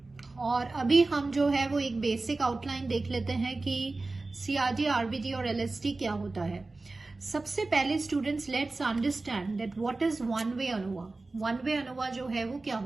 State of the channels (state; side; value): quieter; left; 3.4 dB